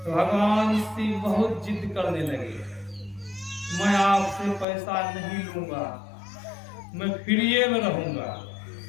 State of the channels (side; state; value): right; drops out; at 4.7 s